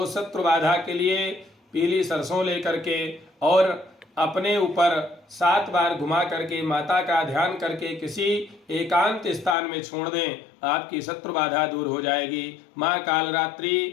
शत्रु बाधा के लिए पीली सरसों लेकर के और अपने ऊपर 7 बार घुमा करके माता का ध्यान करके किसी एकांत स्थान में छोड़ दें, आपकी शत्रु बाधा दूर हो जाएगी। माँ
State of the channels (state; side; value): drops out; right; at 9.6 s